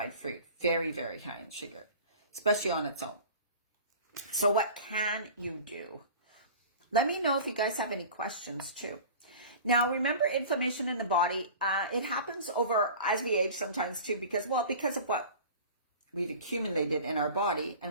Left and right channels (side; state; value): both; inverted; correlation -0.39